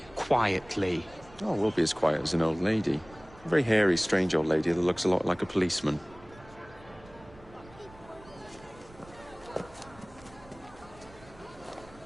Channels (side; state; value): right; noise; rumble, 22 dB below the sound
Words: Quietly. Oh, we'll be as quiet as an old lady. A very hairy, strange old lady that looks a lot like a policeman.